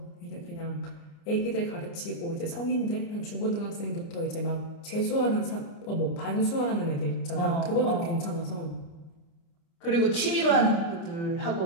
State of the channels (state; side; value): late; right; 29 ms